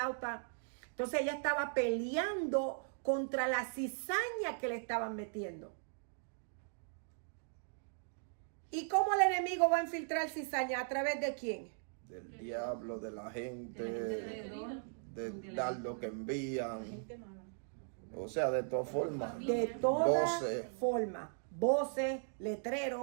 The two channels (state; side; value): silent; left; digital silence